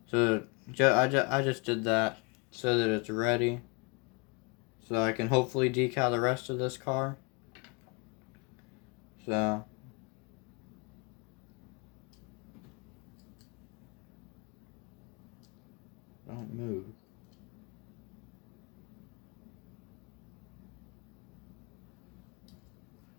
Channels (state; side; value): quieter; right; 30.9 dB